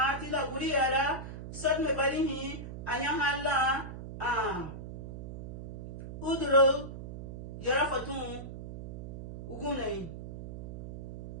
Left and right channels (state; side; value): noise; right; hum, 10 dB below the sound